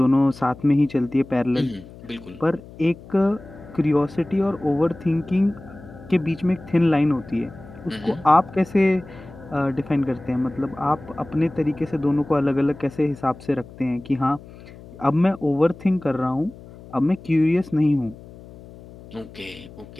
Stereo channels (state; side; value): noise; left; hum, 19 dB below the sound